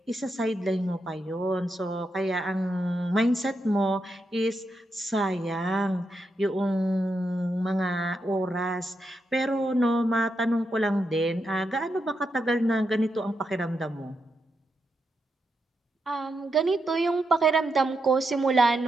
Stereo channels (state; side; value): normal; both; correlation 0.84